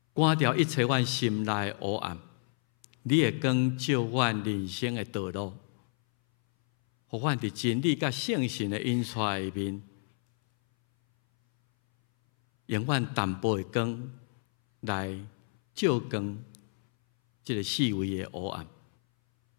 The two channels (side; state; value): right; silent; 58 dB below the other